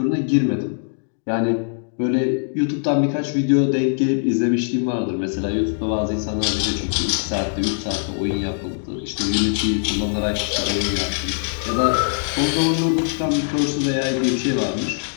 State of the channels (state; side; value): silent; right; digital silence